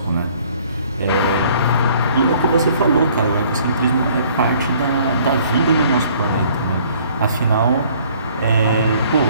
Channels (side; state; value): both; inverted; correlation -0.58